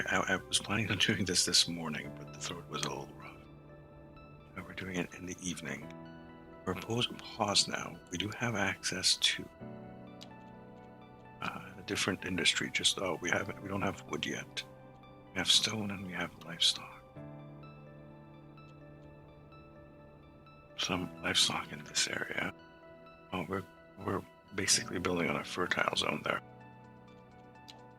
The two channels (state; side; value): identical; both; correlation 1.00